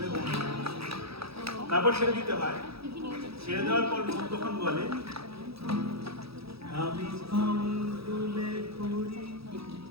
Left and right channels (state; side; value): late; left; 0.77 ms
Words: না তারপর ছেড়ে দিতে হয় ছেড়ে দেওয়ার পর মন তখন বলে আমি তুলে করি